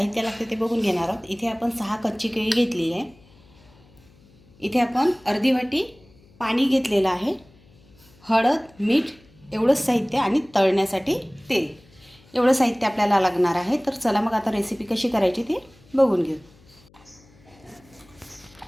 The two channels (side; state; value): left; noise; hum, 28 dB below the sound